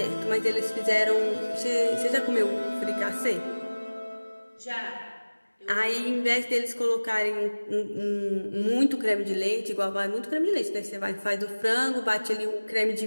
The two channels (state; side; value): inverted; both; correlation -1.00